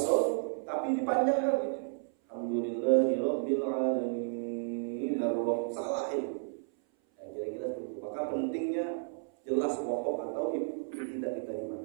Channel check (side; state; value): left; silent; 56 dB below the other